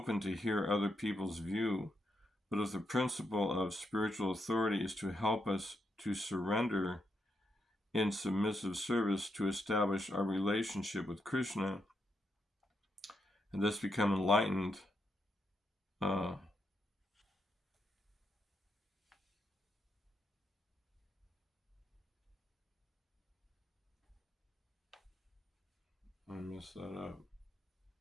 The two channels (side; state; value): both; normal; correlation 0.81